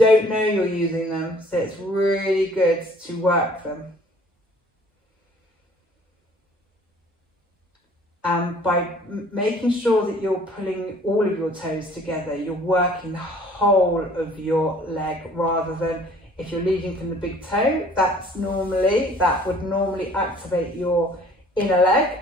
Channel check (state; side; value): normal; both; correlation 0.54